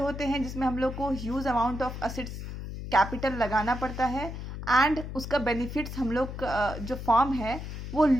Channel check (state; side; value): noise; left; hum, 8 dB below the sound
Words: हैं जिसमें हम लोग को huge amount of assets capital लगाना पड़ता है एंड उसका बेनिफिट्स हम लोग जो फॉर्म है वो